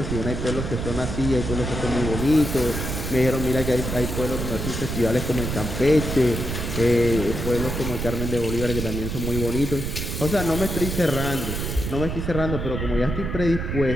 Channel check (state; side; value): noise; right; rumble, 3 dB below the sound